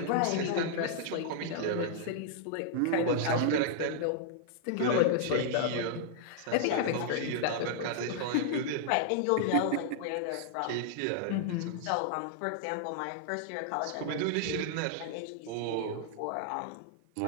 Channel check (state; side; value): different; both; correlation -0.01